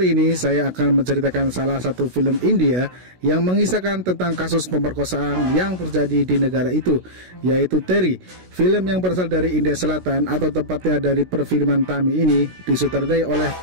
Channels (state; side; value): late; left; 16 ms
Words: ini saya akan menceritakan salah satu film India yang mengisahkan tentang kasus pemerkosaan yang terjadi di negara itu, yaitu Terry. Film yang berasal dari India Selatan atau tepatnya dari perfilman Tamil ini disutradarai oleh